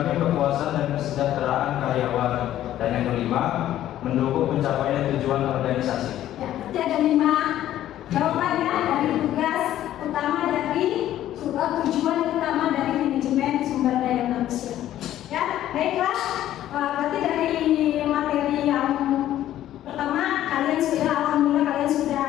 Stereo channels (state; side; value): quieter; right; 12.6 dB